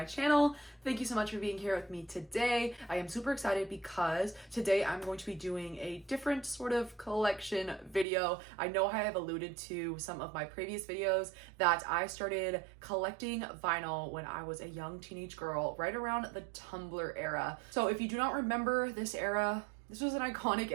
channel. Thank you so much for being here with me today. I am super excited because today I'm going to be doing a different sort of collection video. I know I have alluded to some of my previous videos that I started collecting vinyl when I was a young teenage girl, right around the Tumblr era. So if you do not remember this era, this was an iconic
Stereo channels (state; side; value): drops out; left; at 8.1 s